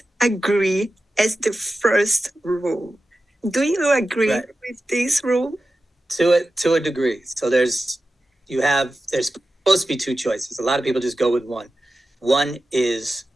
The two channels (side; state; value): both; normal; correlation 0.93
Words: agree as the first rule. Do you agree with this rule? To a degree. So there's supposed to be two choices. A lot of people just go with one. One is